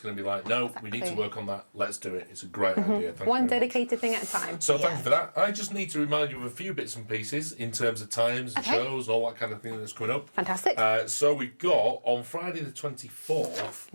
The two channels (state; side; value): inverted; both; correlation -1.00